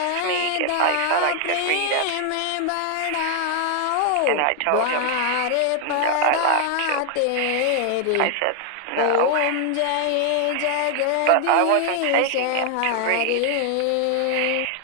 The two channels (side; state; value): both; different; correlation 0.00